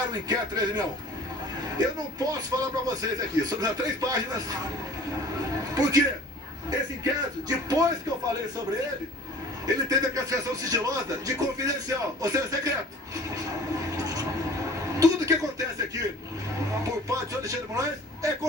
o inquérito 1361. Eu não posso falar para vocês aqui, sobre as 3 páginas, porque esse inquérito, depois que eu falei sobre ele, ele teve a classificação sigilosa de confidencial, ou seja, secreto. Tudo que acontece aqui, por parte de Alexandre de Moraes, é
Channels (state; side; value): normal; both; correlation 0.47